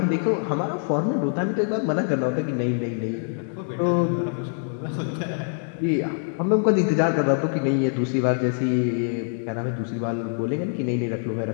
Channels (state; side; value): silent; right; digital silence